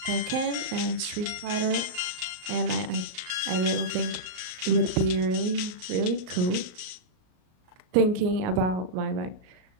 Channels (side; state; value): left; late; 38 ms